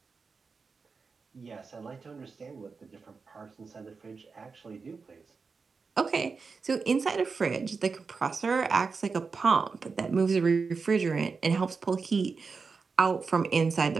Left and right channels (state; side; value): quieter; left; 4.8 dB